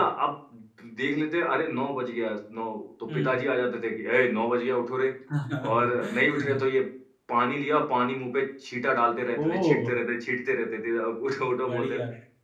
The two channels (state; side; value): identical; both; correlation 1.00